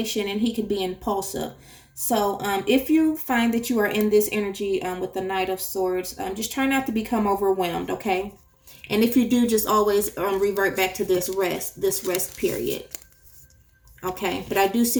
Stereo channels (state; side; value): identical; both; correlation 1.00